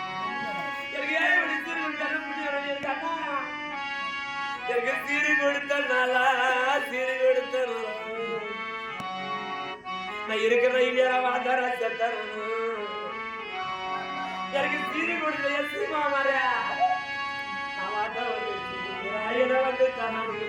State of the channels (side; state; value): both; identical; correlation 1.00